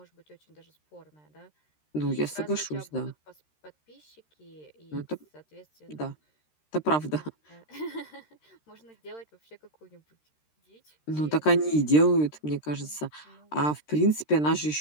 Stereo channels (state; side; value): late; right; 13 ms